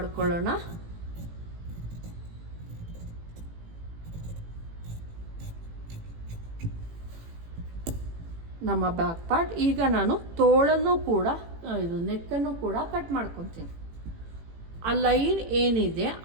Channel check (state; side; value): late; left; 18 ms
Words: ನಮ್ಮ ಬ್ಯಾಕ್ ಪಾರ್ಟ್. ಈಗ ನಾನು ತೋಳನ್ನು ಕೂಡ ಇದು ನೆಕ್ಕನ್ನು ಕೂಡ ಕಟ್ ಮಾಡ್ಕೊತೀನಿ. ಆ ಲೈನ್ ಏನಿದೆ